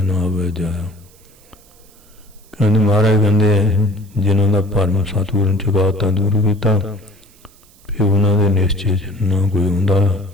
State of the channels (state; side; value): noise; right; hiss, 28 dB below the sound